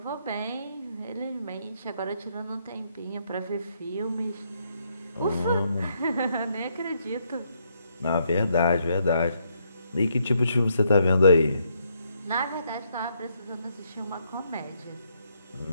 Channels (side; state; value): both; inverted; correlation -0.75